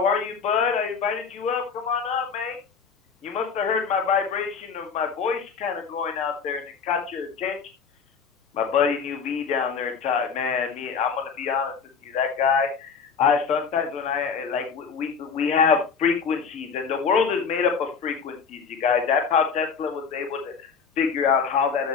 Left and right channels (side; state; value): right; quieter; 5.9 dB